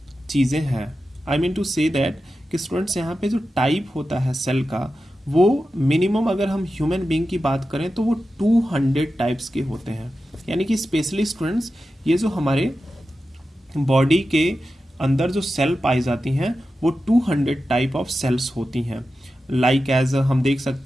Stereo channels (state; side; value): normal; both; correlation 0.92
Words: चीज़ें हैं। I mean to say that कि स्टूडेंट्स यहाँ पे जो टाइप होता है सेल का, वो मिनिमम अगर हम ह्यूमन बीइंग की बात करें तो वो 200 टाइप्स के होते हैं। यानी कि स्पेशली स्टूडेंट्स ये जो हमारे बॉडी के अंदर जो सेल पाई जाती हैं वो 200 टाइप ऑफ सेल्स होती हैं। लाइक एज हम देख